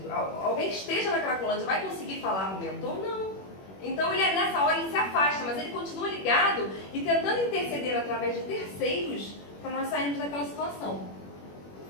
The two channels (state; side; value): late; right; 21 ms